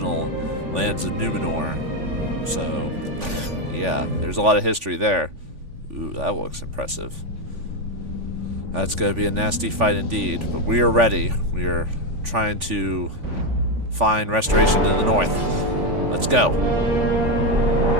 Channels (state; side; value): late; left; 3.5 ms